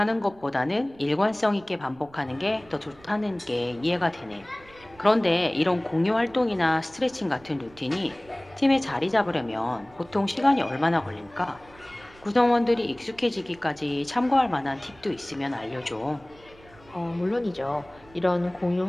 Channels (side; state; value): right; noise; rumble, 25 dB below the sound